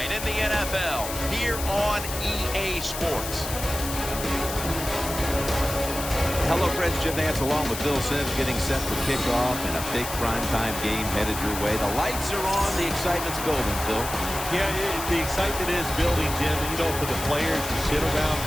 in the NFL here on EA Sports. Hello, friends. Jim Nantz along with Bill Sims getting set for kickoff and a big primetime game headed your way. The lights are on. The excitement's building, Bill. Yeah, the excitement is building, Jim. And, you know, for the players, you sit around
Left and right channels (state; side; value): noise; left; hiss, 7 dB below the sound